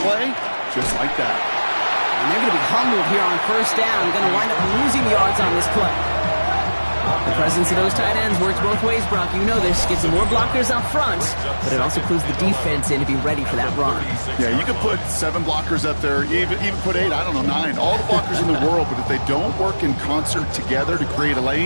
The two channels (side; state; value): both; inverted; correlation -1.00